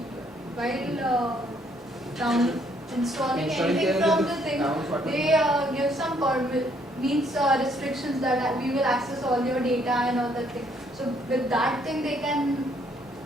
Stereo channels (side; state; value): both; normal; correlation 0.67